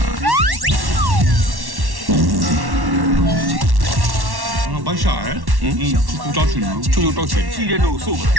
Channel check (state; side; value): late; left; 1.1 ms